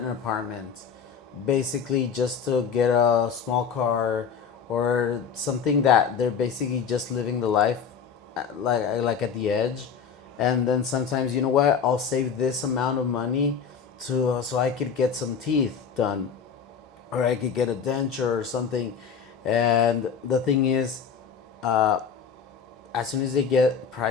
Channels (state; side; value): quieter; right; 6.6 dB